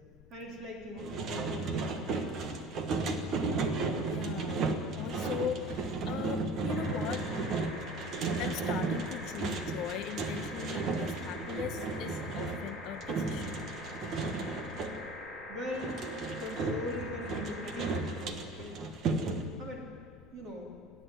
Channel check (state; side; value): noise; left; rumble, 22 dB below the sound